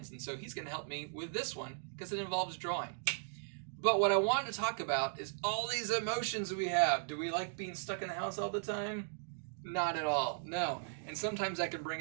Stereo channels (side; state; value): left; silent; digital silence